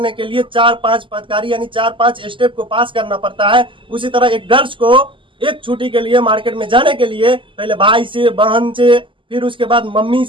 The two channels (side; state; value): left; late; 0.25 ms